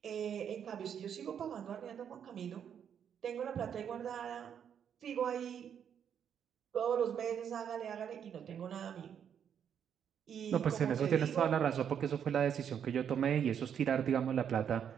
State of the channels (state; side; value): quieter; left; 8.4 dB